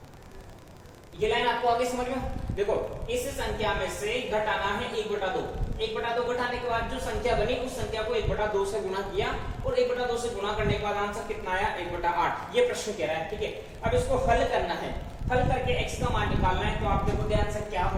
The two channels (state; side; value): identical; both; correlation 1.00